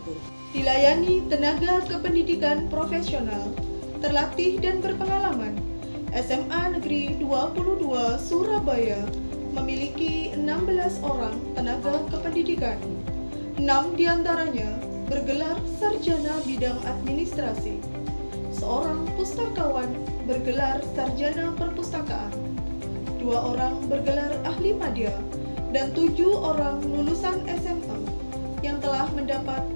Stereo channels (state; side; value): inverted; both; correlation -1.00